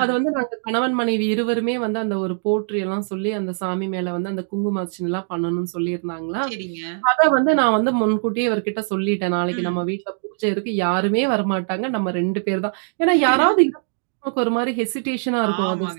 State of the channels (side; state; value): left; silent; digital silence